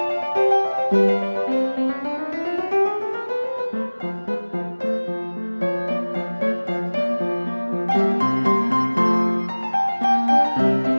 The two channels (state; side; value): inverted; both; correlation -1.00